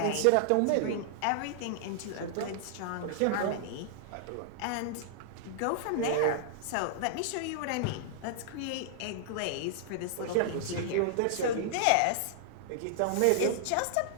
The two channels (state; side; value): different; both; correlation -0.01